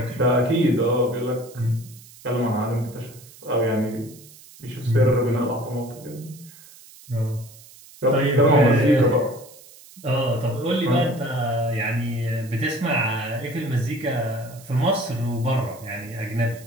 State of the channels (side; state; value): right; noise; hiss, 21 dB below the sound